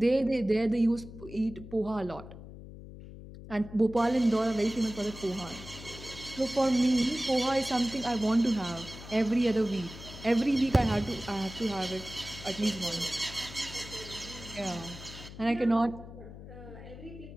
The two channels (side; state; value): left; noise; hum, 14 dB below the sound